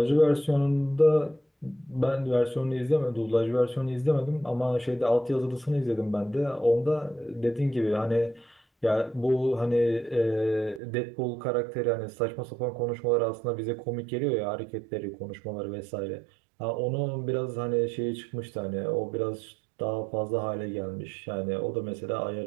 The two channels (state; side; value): drops out; left; at 10.8 s